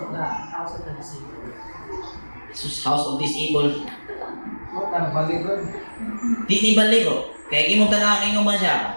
the disabled. House of Disabled. Baligon. Di ni baligo. Kaya imong tanawin man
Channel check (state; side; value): inverted; both; correlation -1.00